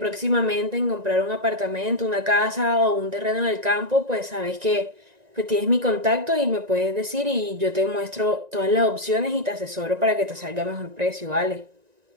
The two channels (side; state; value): left; late; 1.9 ms